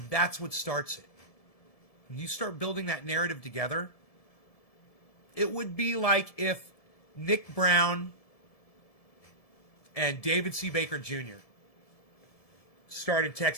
that's what starts it. When you start building that narrative together, it would be like if Nick Brown and David C. Baker Jr. started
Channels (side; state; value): right; late; 1.7 ms